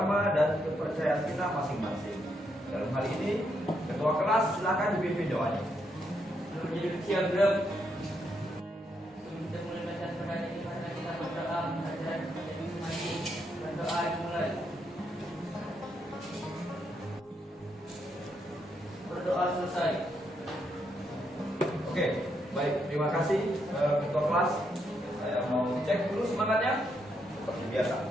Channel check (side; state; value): both; normal; correlation 0.78